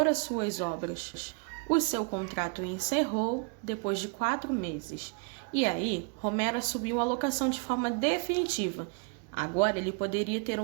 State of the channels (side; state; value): left; quieter; 34.2 dB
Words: as suas obras. O seu contrato encerrou depois de 4 meses. E aí, Romero assumiu a locação de forma definitiva. Agora ele poderia ter